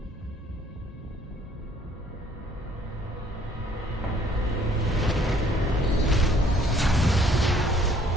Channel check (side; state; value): both; normal; correlation 0.61